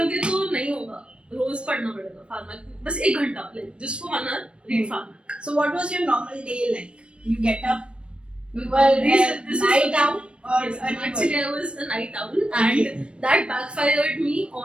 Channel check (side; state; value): left; late; 0.057 ms